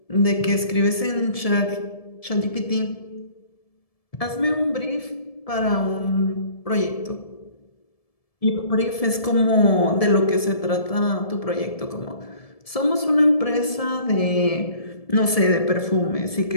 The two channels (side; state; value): right; late; 1.7 ms